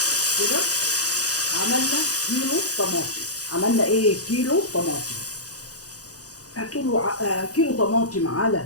كده. عملنا كيلو طماطم. عملنا ايه؟ كيلو طماطم. كيلو طماطم على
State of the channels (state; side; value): late; right; 0.67 ms